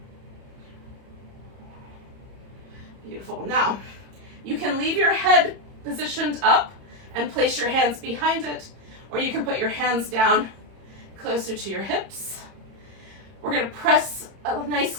Beautiful. Now, you can leave your head positioned up and place your hands behind it, or you can put your hands down closer to your hips. We're going to press a nice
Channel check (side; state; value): left; late; 30 ms